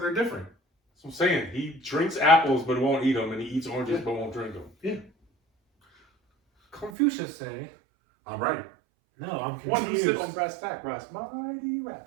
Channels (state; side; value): drops out; left; at 6.9 s